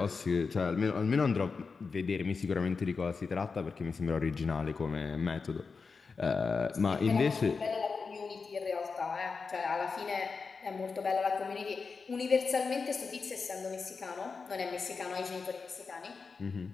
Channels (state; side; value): quieter; right; 4.8 dB